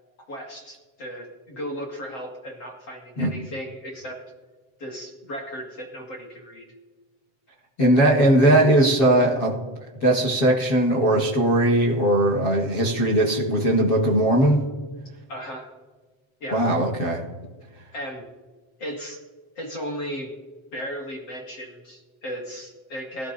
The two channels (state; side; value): late; right; 7.6 ms